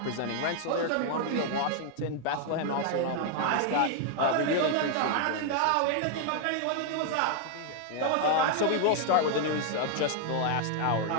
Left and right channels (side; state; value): both; different; correlation 0.00